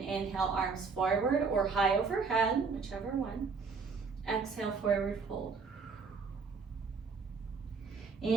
arms forward or high overhead, whichever one. Exhale, forward fold.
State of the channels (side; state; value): left; quieter; 4.9 dB